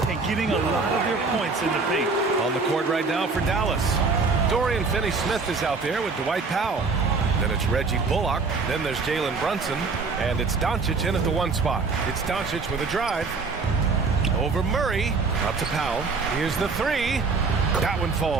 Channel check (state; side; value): quieter; left; 4.3 dB